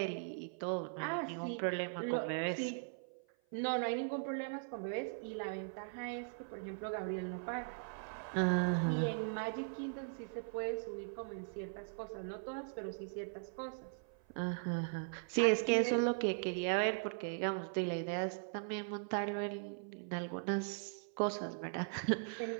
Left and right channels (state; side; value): silent; left; 51 dB below the other